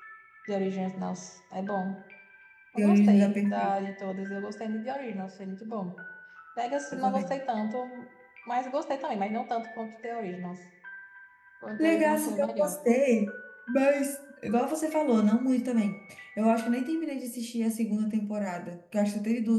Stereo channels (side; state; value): both; identical; correlation 1.00